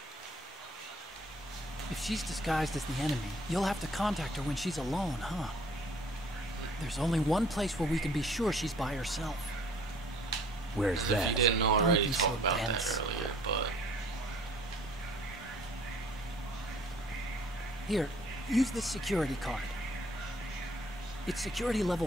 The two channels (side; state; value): both; normal; correlation 0.56